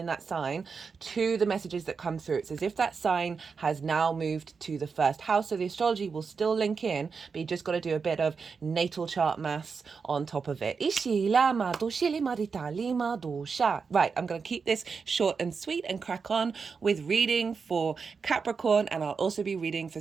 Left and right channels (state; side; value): quieter; left; 5.3 dB